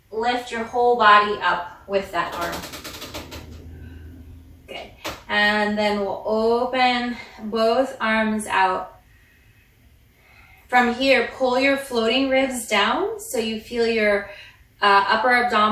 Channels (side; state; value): both; identical; correlation 1.00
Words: lift your whole body up with that arm. Good, and then we'll open both arms out. From here, pull your floating ribs down so you feel your upper